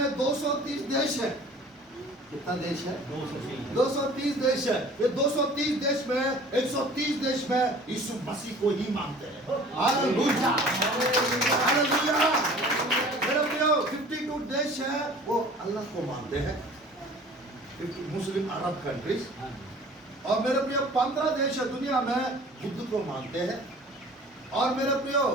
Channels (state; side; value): normal; both; correlation 0.46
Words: 230 देश है। कितना देश है? 230 देश है। ये 230 देश में 130 देश में यीशु मसीह को ही मानते हैं। Hallelujah, hallelujah. मेरे प्रियो, 52 देश है वो अल्लाह को मानते हैं, मुस्लिम अरब कंट्रीज। और मेरे प्रियो, 15 देश है दुनिया में बुद्ध को मानते हैं। और मेरे प्रियो,